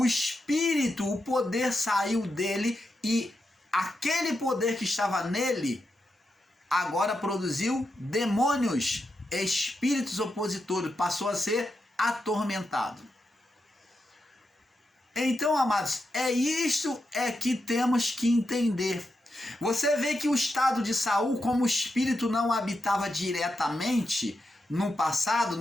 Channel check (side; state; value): both; normal; correlation 0.86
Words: espírito, o poder saiu dele e aquele poder que estava nele agora produziu demônios, espíritos opositores, passou a ser atormentado. Então, amados, isto que temos que entender. Você vê que o estado de Saul, como o espírito não habitava diretamente no passado,